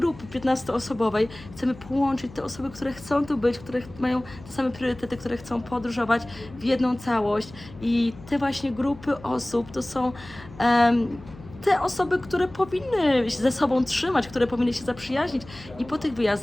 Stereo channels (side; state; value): left; noise; hum, 19 dB below the sound